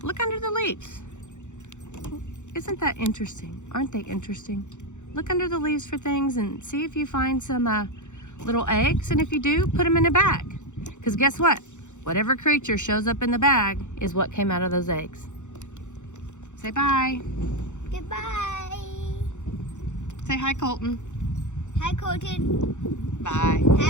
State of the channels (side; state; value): right; late; 0.84 ms